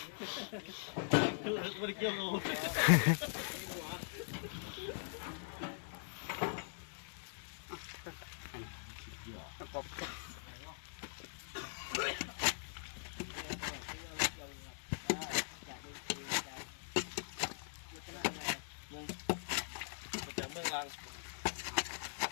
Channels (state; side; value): silent; right; digital silence